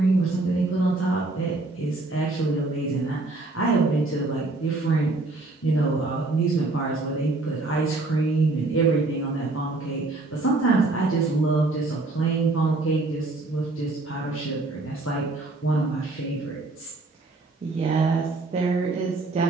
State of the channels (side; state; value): left; quieter; 3.2 dB